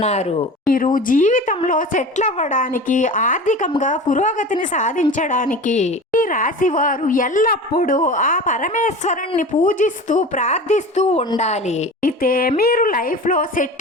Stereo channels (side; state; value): both; normal; correlation 0.34